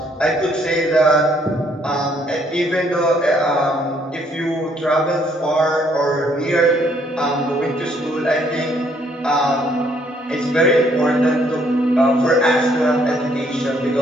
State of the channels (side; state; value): both; normal; correlation 0.67